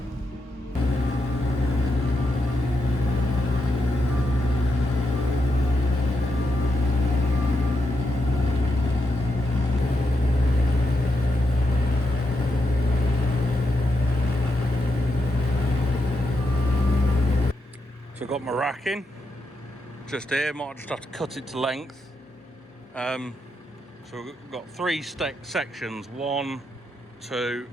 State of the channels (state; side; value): normal; both; correlation 0.83